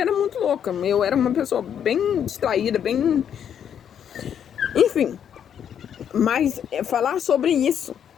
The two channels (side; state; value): right; quieter; 8.8 dB